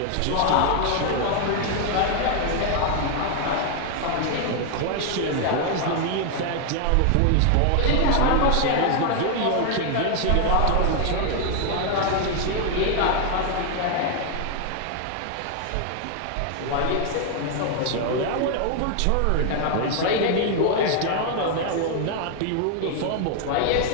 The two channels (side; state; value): both; different; correlation 0.00